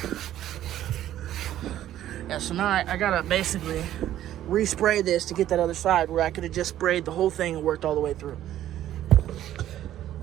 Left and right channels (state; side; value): quieter; left; 12.5 dB